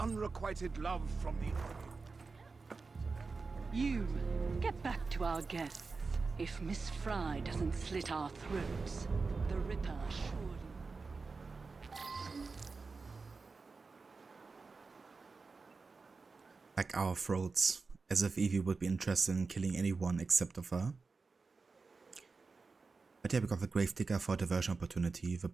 love from the army. You, get back to our guests. If Miss Fry doesn't slit our throats, the Ripper surely... Like our throats, as if Evie would be interested in killing anyone except of her. But yeah, we got the Gravedigger for diversion opportunity, the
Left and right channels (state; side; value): quieter; left; 4.3 dB